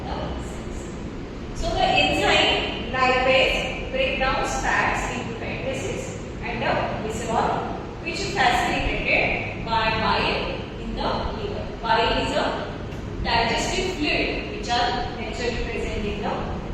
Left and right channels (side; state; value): both; identical; correlation 1.00